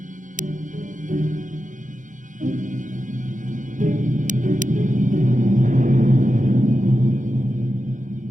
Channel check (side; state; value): left; late; 0.37 ms